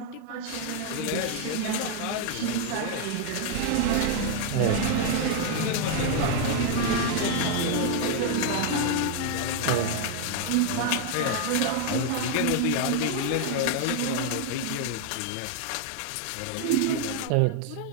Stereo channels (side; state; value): both; different; correlation 0.00